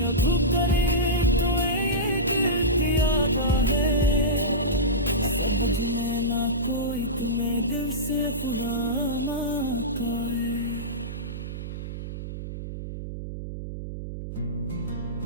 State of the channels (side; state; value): right; noise; hum, 8 dB below the sound